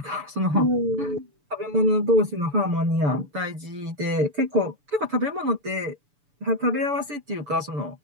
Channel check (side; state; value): left; late; 6.9 ms